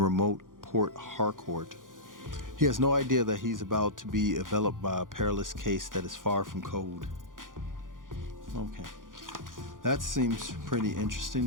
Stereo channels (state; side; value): late; left; 0.89 ms